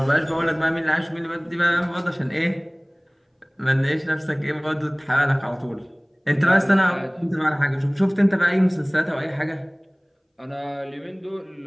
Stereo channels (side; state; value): both; identical; correlation 1.00